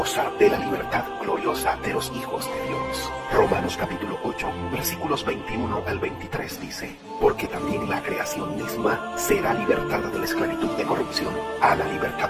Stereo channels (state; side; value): identical; both; correlation 1.00